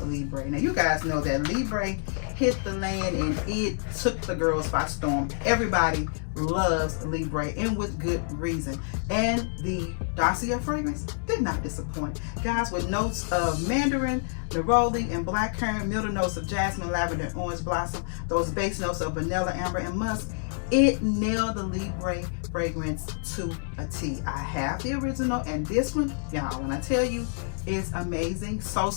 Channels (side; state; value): right; silent; digital silence